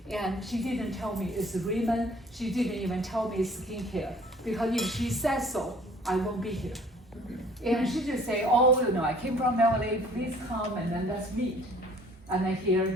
and she didn't tell me it's RIMAN. She didn't even tell me it's skincare, because if she says so, I won't be here. And she just say, oh, I came from LA, please come, and then let's meet. And then here,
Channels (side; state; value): both; normal; correlation 0.53